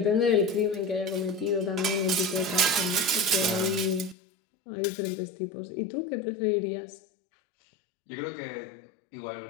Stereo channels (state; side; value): drops out; right; at 4.2 s